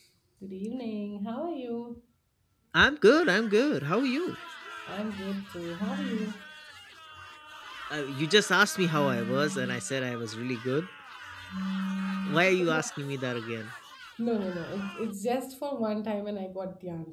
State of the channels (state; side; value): identical; both; correlation 1.00